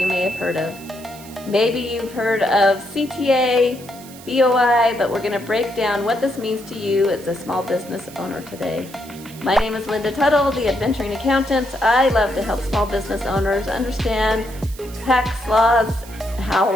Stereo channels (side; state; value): right; noise; hiss, 19 dB below the sound